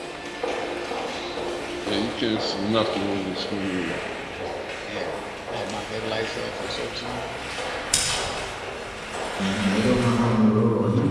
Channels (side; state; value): both; identical; correlation 1.00